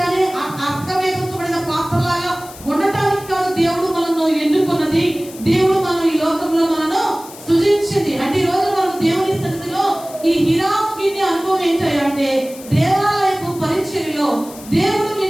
అర్థమేర్చబడిన పాత్రలాగా ఉండటానికి కాదు దేవుడు మనను ఎన్నుకున్నది. దేవుడు మనం ఈ లోకంలో మనను సృజించింది. అంటే ఈ రోజు మనం దేవుని సన్నిధిలో ఈ హిరాముని అనుభవం ఏంటంటే, దేవాలయపు పరిచర్యలో దేవుడు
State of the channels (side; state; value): left; noise; hiss, 18 dB below the sound